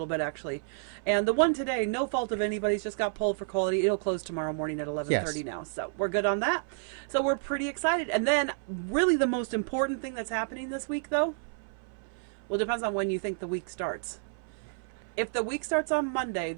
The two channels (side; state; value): left; silent; 58 dB below the other